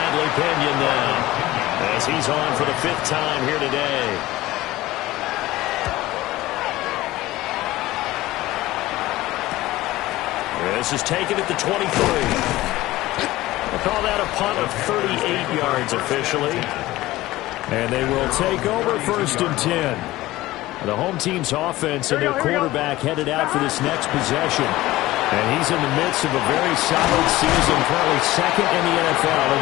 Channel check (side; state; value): right; quieter; 17.4 dB